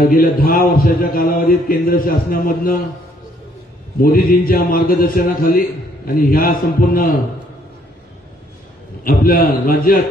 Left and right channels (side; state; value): both; normal; correlation 0.65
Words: 10 वर्षाच्या कालावधीत केंद्र शासनामधनं मोदीजींच्या मार्गदर्शनाखाली आणि ह्या संपूर्ण आपल्या